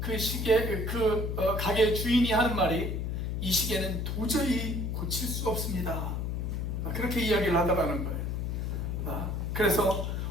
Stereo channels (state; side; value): noise; left; hum, 1 dB below the sound